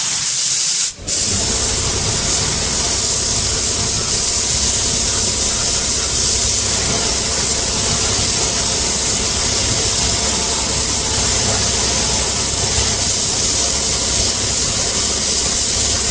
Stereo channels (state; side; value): identical; both; correlation 1.00